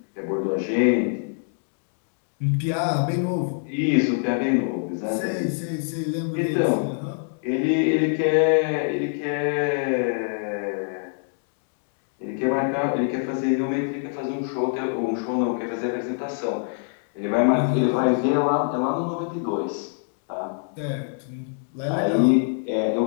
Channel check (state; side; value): silent; right; 62 dB below the other